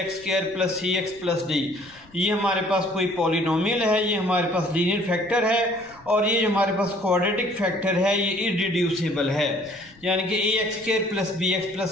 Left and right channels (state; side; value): noise; left; rumble, 27 dB below the sound